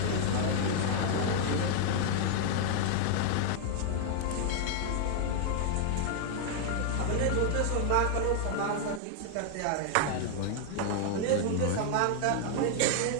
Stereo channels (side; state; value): both; different; correlation 0.00